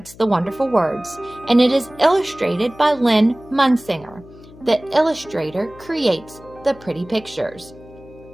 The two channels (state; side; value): noise; left; hum, 21 dB below the sound